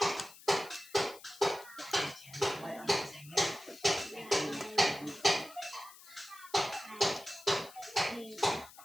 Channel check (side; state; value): left; noise; hiss, 20 dB below the sound